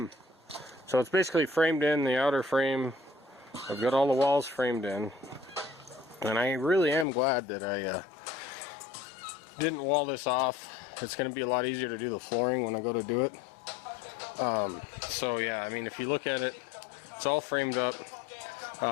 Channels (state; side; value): drops out; right; at 7.1 s